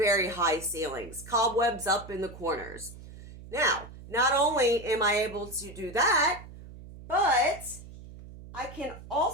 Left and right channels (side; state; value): right; noise; hum, 16 dB below the sound